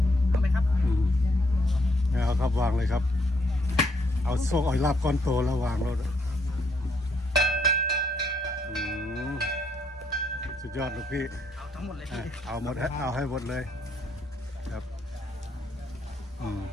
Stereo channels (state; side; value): normal; both; correlation 0.73